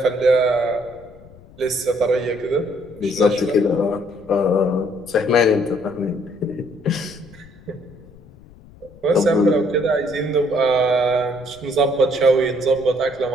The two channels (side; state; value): left; noise; rumble, 23 dB below the sound